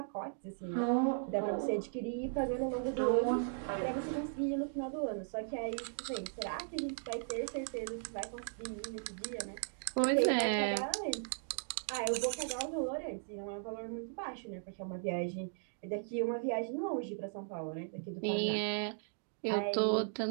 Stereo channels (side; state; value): left; silent; digital silence